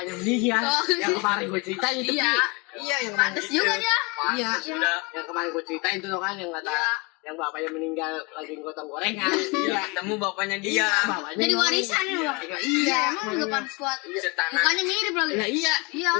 meninggal, Oh. yang kemarin gue ceritain itu. Iya. Iya, yang kemarin. Pantes juga dia. Iya. Sudah. Yang kemarin gue ceritain tuh kan yang kata yang bapaknya meninggal lagi gotong gorengan. Iya, ketemu bapaknya dia. bapaknya Jadi ngomong. warisan ya, Bang. Iya, Iya, emang enggak pantas kuat. Setanah. Mukanya mirip lagi. Iya, iya. Iya.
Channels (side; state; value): right; quieter; 27.8 dB